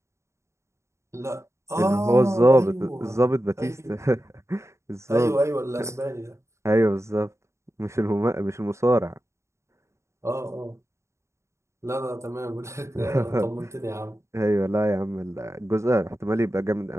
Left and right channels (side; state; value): left; late; 0.14 ms